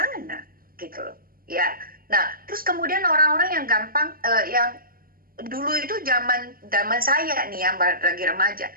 gitu loh, ya. Nah, terus kemudian orang-orang yang gampang, yang dulu itu zaman saya nih yang lagi remaja,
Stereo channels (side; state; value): left; late; 0.42 ms